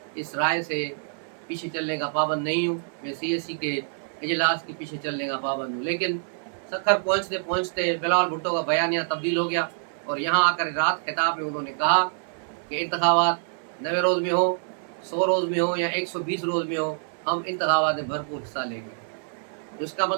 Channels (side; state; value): left; silent; digital silence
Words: इस राय से पीछे चलने का पाबंद नहीं हूँ, मैं CSE के इजलास के पीछे चलने का पाबंद हूँ। लेकिन सखर पहुँचते पहुँचते बिलावल भुट्टो का बयानिया तब्दील हो गया और यहाँ आकर रात खिताब में उन्होंने कहा कि इंतखाबात 90 रोज़ में हो, 100 रोज़ में हो या 120 रोज़ में हो, हम इंतखाबात में भरपूर हिस्सा लेंगे। तो इसका